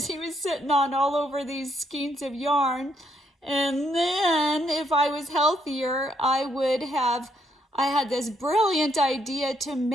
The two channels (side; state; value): both; normal; correlation 0.73